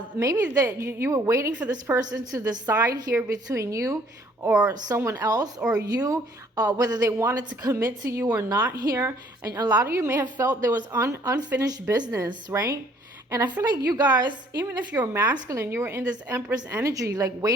maybe that you were waiting for this person to decide here between you or someone else, or you, whether they wanted to commit to you or not here. And a lot of you may have felt there was unfinished business, right? And I feel like you guys, even if you're masculine, you were in this Empress energy, like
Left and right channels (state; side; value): normal; both; correlation 0.60